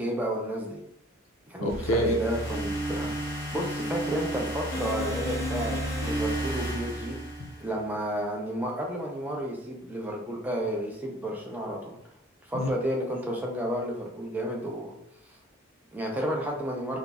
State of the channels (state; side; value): normal; both; correlation 0.54